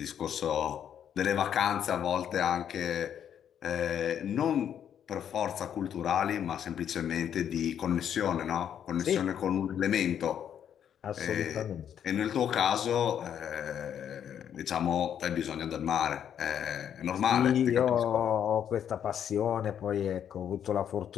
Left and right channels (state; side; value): quieter; right; 9.1 dB